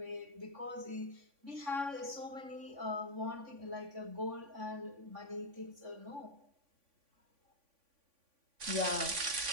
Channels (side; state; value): left; late; 3.5 ms